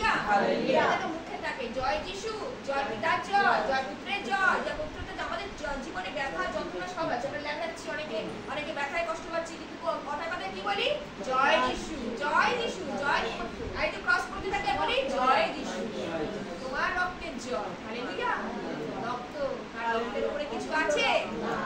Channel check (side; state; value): both; identical; correlation 1.00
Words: hallelujah. এটা তো মুখে থাকে জয় যিশু, জয় পিতার জয়, জয় পুত্রের জয়। যে পুত্রটা আমাদের জীবনে ব্যথা যন্ত্রণা সব আছে, আমরা ল্যাংড়াচ্ছি, অনেকে ব্যথায় কষ্ট পাচ্ছি, কিন্তু কথায় কথায় কি বলি? জয় যিশু, জয় যিশু, জয়। এই তো ক্রস করতে থাকে বলি জয় যিশু, তোমার রক্তের জয়। হালেলুয়া। রক্ত, তার রক্তের উপরে কিছু আছে?